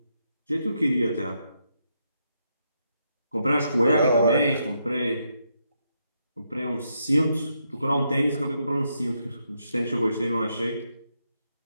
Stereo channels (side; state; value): both; inverted; correlation -0.80